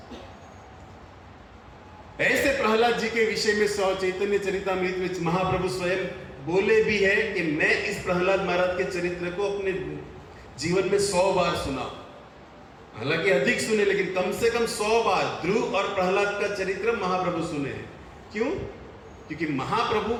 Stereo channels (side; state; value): both; identical; correlation 1.00